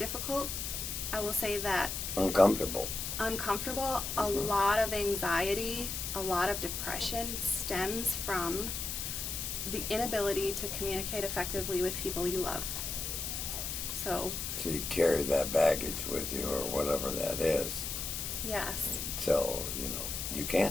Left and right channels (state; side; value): noise; left; hiss, 4 dB below the sound